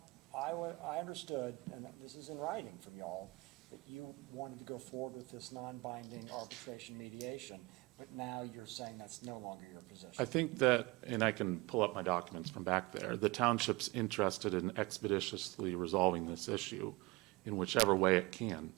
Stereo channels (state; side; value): quieter; left; 23.9 dB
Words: I understood, and this is in writing from y'all, that you wanted to go forward with this non-binding arbitration mediation, but now you're saying that's no longer your position. I think that, and I can pull up my documents from back there, the township's interested in expeditiously resolving this issue in whichever way it can,